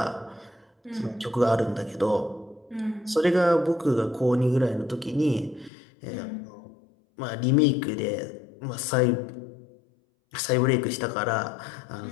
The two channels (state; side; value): drops out; right; at 5.7 s